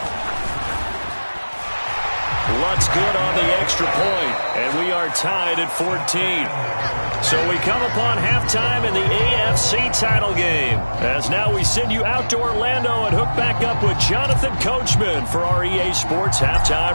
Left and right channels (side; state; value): both; inverted; correlation -1.00